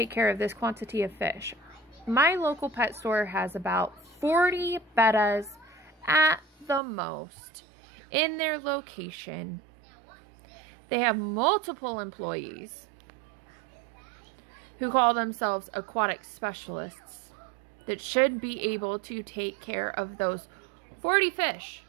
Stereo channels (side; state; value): left; drops out; at 6.8 s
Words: care of this quantity of fish. My local pet store has about 40 bettas at the most in their location. They have multiple employees who call themselves aquatic specialists that should be able to take care of those 40 fish.